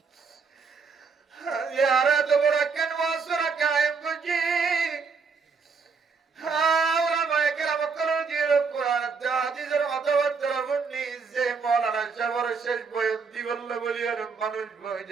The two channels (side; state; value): left; quieter; 5.1 dB